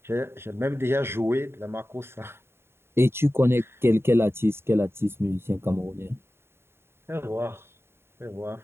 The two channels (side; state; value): left; late; 0.12 ms